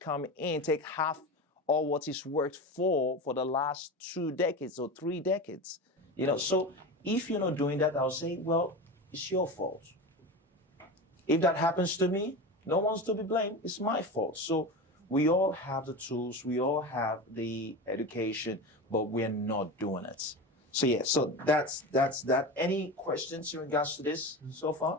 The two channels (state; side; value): normal; both; correlation 0.25